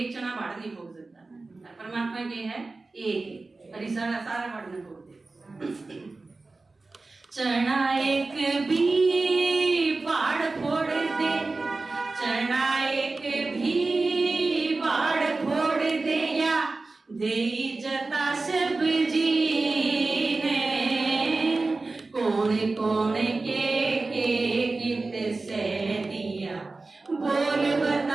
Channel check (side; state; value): left; quieter; 3.5 dB